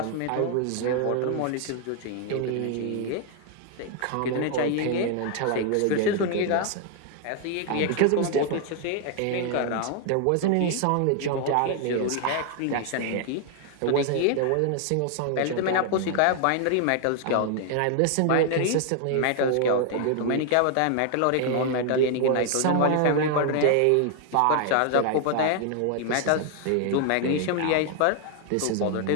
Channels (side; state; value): both; different; correlation 0.00